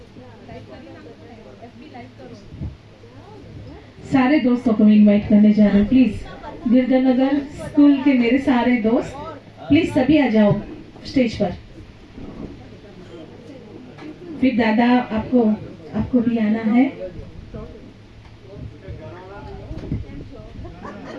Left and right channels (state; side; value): identical; both; correlation 1.00